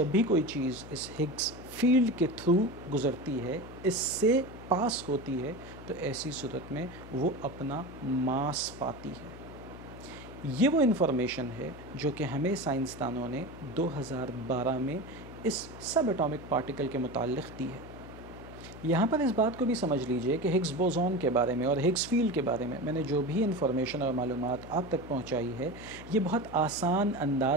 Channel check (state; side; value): noise; left; hum, 15 dB below the sound